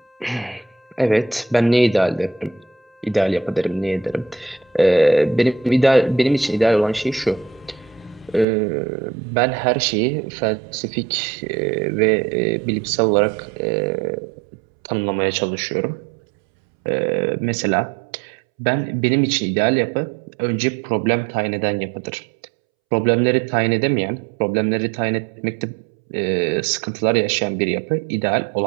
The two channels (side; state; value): left; drops out; at 8.5 s